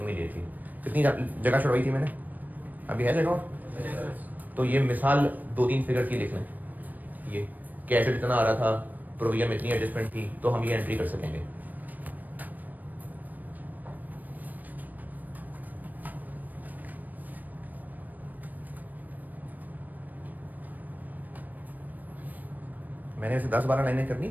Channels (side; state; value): left; late; 0.085 ms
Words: immediately. कितनी जगह छुड़वाई थी मैंने? अभी है जगह? तो ये मिसाल 2-3 फिगर की लिख लें, ये कि एसेट इतना आ रहा था, प्रोविजन में इतनी एडजस्टमेंट थी, तो हम ये एंट्री कर सकेंगे। मैंने इसे 10-12 लाइनें करनी